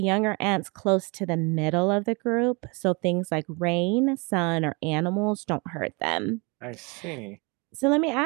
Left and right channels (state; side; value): quieter; left; 29.8 dB